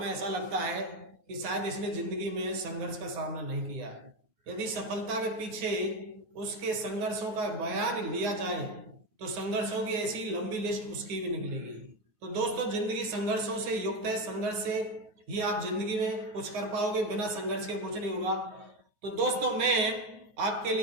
ऐसा लगता है कि शायद इसने जिंदगी में संघर्ष का सामना नहीं किया है। यदि सफलता के पीछे उसके संघर्षों का बयान लिया जाए तो संघर्षों की ऐसी लंबी लिस्ट उसकी भी निकलेगी। तो दोस्तों जिंदगी संघर्षों से युक्त है, संघर्ष से ही आप जिंदगी में कुछ कर पाओगे, बिना संघर्ष के कुछ नहीं होगा। तो दोस्तों मैं आपके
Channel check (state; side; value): late; left; 9.4 ms